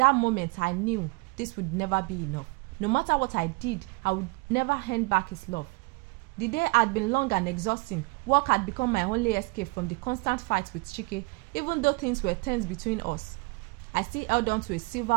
moment, I knew this would never be enough. No matter what I did, I would never hand back his love. The day had been long and exhausting. Work had become my only escape from the constant fights with Chike, even though things were tense between us. I still held on to a sliver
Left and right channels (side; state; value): left; quieter; 28.3 dB